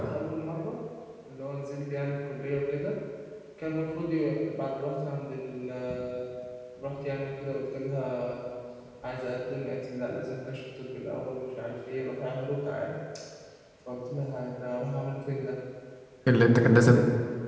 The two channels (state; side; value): identical; both; correlation 1.00